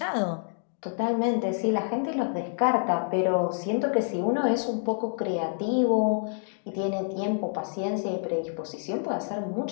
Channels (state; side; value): silent; right; digital silence